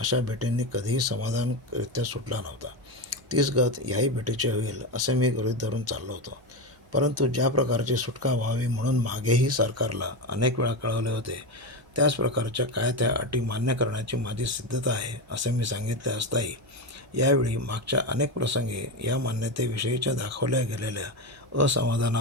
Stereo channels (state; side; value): noise; right; hum, 30 dB below the sound